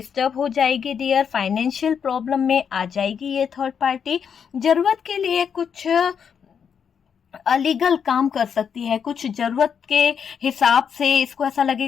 हो जाएगी डियर, फाइनेंशियल प्रॉब्लम में आ जाएगी ये थर्ड पार्टी, जरूरत के लिए कुछ अलीगल काम कर सकती है, कुछ जरूरत के हिसाब से इसको ऐसा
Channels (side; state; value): right; quieter; 7.3 dB